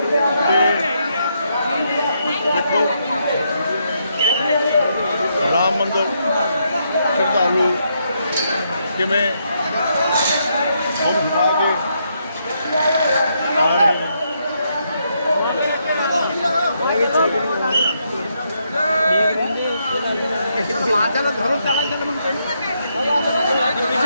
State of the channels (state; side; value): inverted; both; correlation -0.78